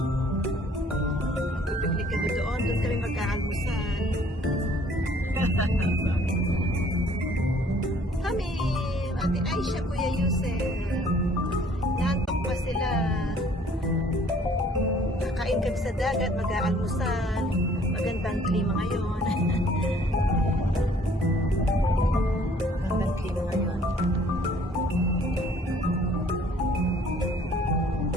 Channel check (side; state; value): both; normal; correlation 0.58